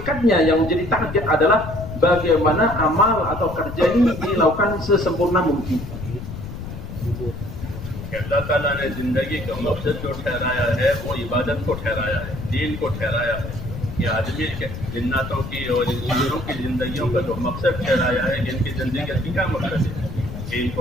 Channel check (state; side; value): noise; left; rumble, 9 dB below the sound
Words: yang menjadi target adalah bagaimana amal atau kerja ini dilakukan sesempurna mungkin. अल्लाह ताला ने जिंदगी का मकसद जो ठहराया है वो इबादत को ठहराया है। दीन को ठहराया है, ये आदमी के जिन्नातों की और इंसानों की जिंदगियों का जो मकसद ठहराया है, इनकी जिंदगी का क्या मकसद है? दीन को